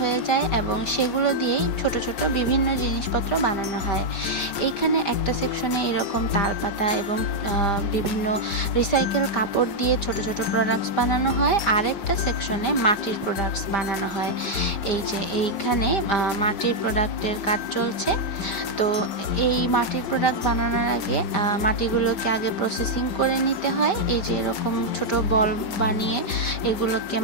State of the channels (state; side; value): late; right; 5.0 ms